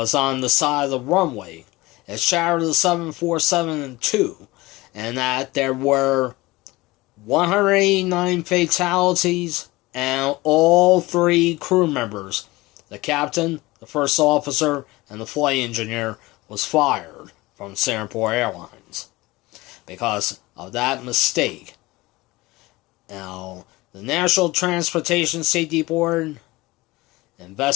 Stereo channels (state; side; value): quieter; right; 20.7 dB